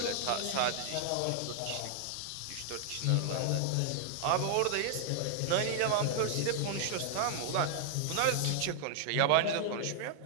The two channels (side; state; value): both; different; correlation 0.00